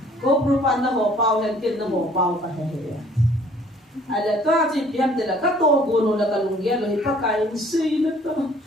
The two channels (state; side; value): normal; both; correlation 0.57